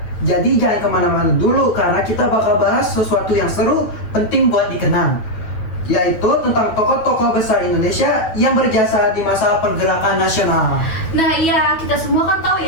Jadi jangan kemana-mana dulu, karena kita bakal bahas sesuatu yang seru, penting buat dikenang, yaitu tentang tokoh-tokoh besar Indonesia yang berjasa di masa pergerakan nasional. Nah iya, kita semua kan tahu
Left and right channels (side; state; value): right; late; 9.0 ms